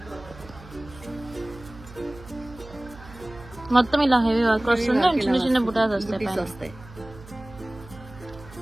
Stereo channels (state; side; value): noise; right; hum, 19 dB below the sound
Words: మొత్తం ఇలా హెవీ వర్క్ వస్తుంది. చిన్న చిన్న బుటాస్ వస్తాయి.